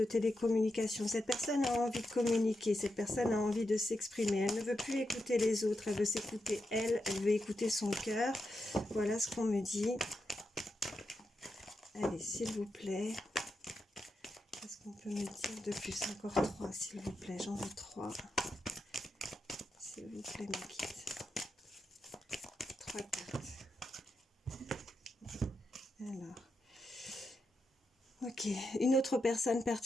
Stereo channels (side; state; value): both; normal; correlation 0.86